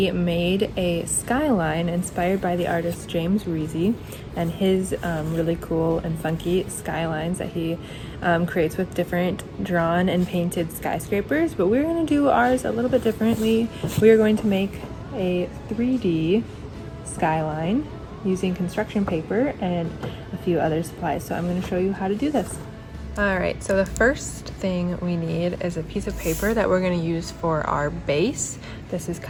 made a skyline inspired by the artist James Reezy and his really cool and funky skylines that he creates with different drawn and painted skyscrapers, but we're going to do ours a little bit differently. We are going to make a 3D skyline using construction paper and a few other supplies, so I'm going to show you how to do this. Alright, so the first thing we need is a piece of paper that we're going to use for our base. This is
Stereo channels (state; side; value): identical; both; correlation 1.00